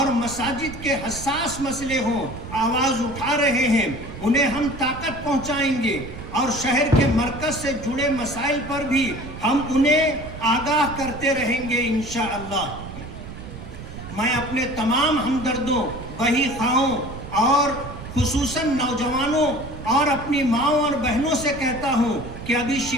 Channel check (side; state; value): right; noise; rumble, 12 dB below the sound